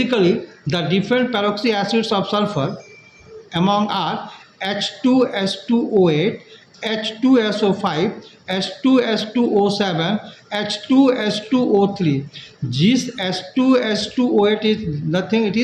the different peroxy acids of sulfur among are H2S2O8, H2SO5, H2S2O7, H2S2O3. This H2S2O8 is nothing, it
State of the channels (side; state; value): both; identical; correlation 1.00